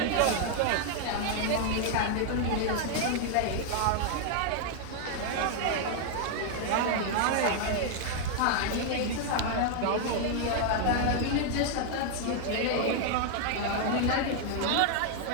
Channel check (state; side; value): different; both; correlation 0.00